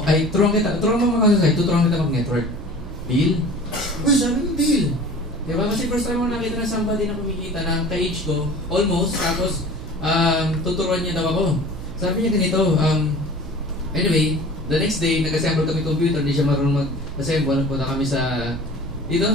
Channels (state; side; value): noise; right; hum, 13 dB below the sound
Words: mag-counter-strike, tuturuan kita mag-network. Deal? Uy, sabi mo deal. Diba? Kasi first time mo nakita na somebody na kumikita na ka-age ko, almost, tapos tuturuan niya daw ako. Sabi niya ganito, anyway, the next day, nag-assemble kami computer, hindi siya marunong mag-assemble. Punta kami sa, dito